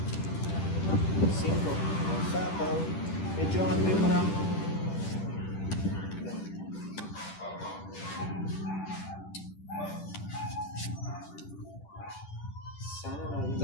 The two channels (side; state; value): right; late; 10 ms